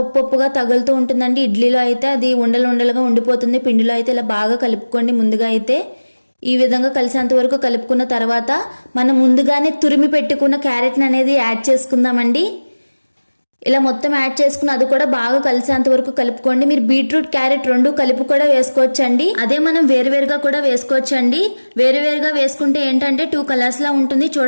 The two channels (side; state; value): both; inverted; correlation -1.00